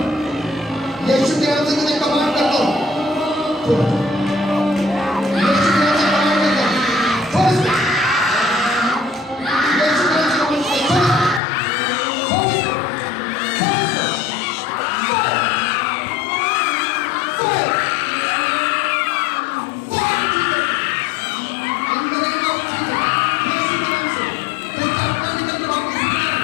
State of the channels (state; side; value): drops out; right; at 11.4 s